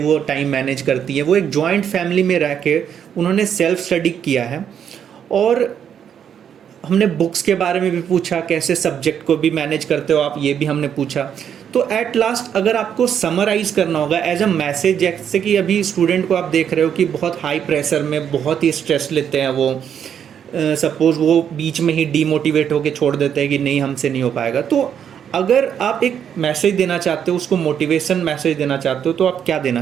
टाइम मैनेज करती है, वो एक जॉइंट फैमिली में रह के उन्होंने सेल्फ स्टडी किया है। और हमने बुक्स के बारे में भी पूछा, कैसे सब्जेक्ट को भी मैनेज करते हो आप, ये भी हमने पूछा। तो एट लास्ट अगर आपको समराइज़ करना होगा एज अ मैसेज, जैसे कि अभी स्टूडेंट को आप देख रहे हो कि बहुत हाई प्रेशर में बहुत ही स्ट्रेस लेते हैं, वो सपोज़ वो बीच में ही डीमोटिवेट होकर छोड़ देते हैं कि नहीं हमसे नहीं हो पाएगा। तो अगर आप एक मैसेज देना चाहते हो, उसको मोटिवेशन मैसेज देना चाहते हो, तो आप क्या देना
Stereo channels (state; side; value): quieter; left; 8.5 dB